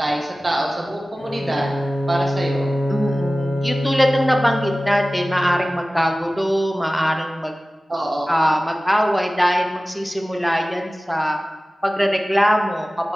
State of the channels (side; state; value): both; normal; correlation 0.97